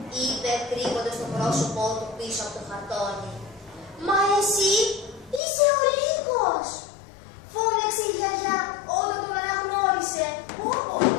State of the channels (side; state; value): right; drops out; at 5.4 s